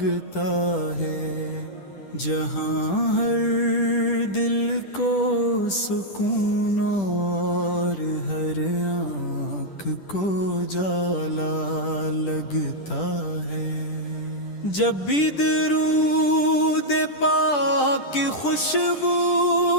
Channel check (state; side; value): late; right; 10 ms